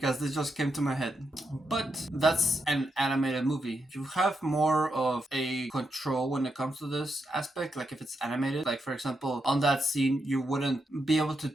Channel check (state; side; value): normal; both; correlation 0.83